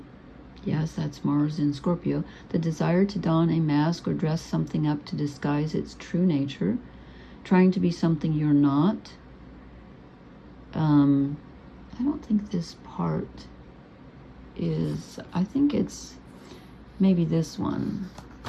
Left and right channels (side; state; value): both; identical; correlation 1.00